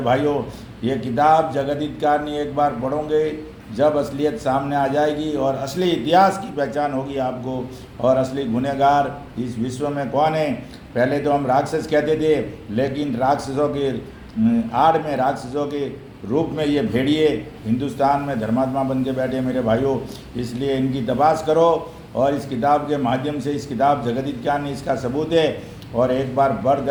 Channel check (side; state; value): both; identical; correlation 1.00